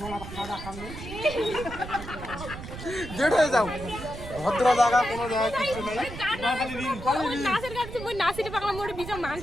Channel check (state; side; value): noise; right; rumble, 11 dB below the sound